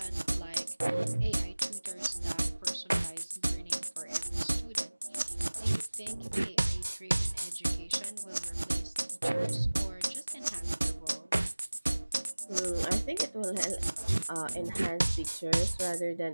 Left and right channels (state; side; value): inverted; both; correlation -1.00